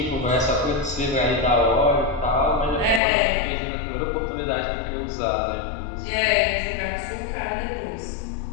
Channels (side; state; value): right; drops out; at 3.0 s